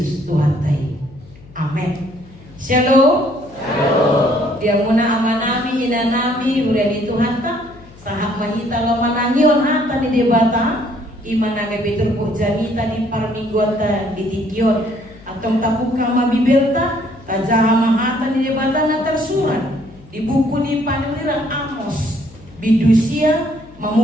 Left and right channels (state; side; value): noise; left; hum, 23 dB below the sound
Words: Tuhan tai. Amin. Shalom. Shalom. Dia muna amanami inanami udah di Tuhan ta sahak mahita lo manangion hata di debata imana ngebetul po janita di parmingguata di tikion atau tabuka mabibelta tajaha mahata di debata na tersurat di buku di Paneliran Amos bidusia